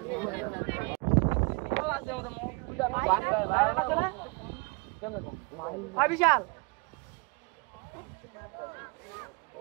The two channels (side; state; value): left; quieter; 29.6 dB